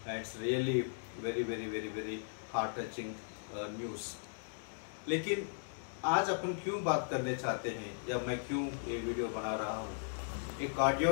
and it's really very heart touching news। लेकिन आज अपन क्यों बात करने चाहते हैं या मैं क्यों ये वीडियो बना रहा हूँ, एक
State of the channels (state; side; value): silent; right; digital silence